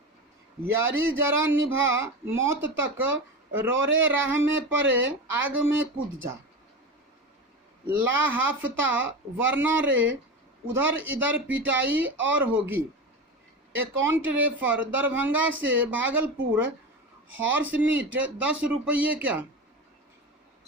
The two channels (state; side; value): normal; both; correlation 0.24